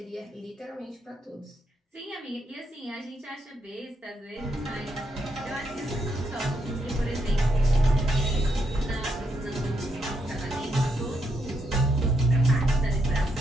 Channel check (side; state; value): both; normal; correlation 0.78